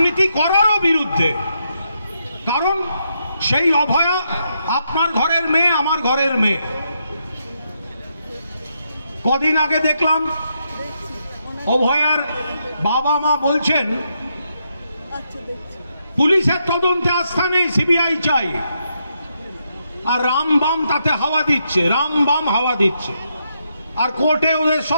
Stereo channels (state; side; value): inverted; both; correlation -0.80